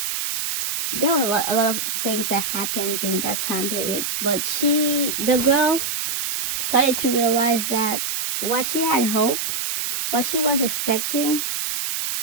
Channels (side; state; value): right; noise; hiss, 2 dB below the sound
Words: there were a lot of things that happened during that time period. But the girl, started to realize that what she had hope, what she was expecting,